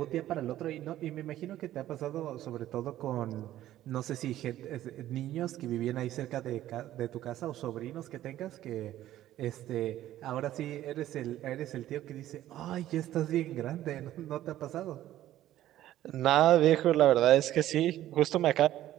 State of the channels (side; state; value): left; quieter; 13.4 dB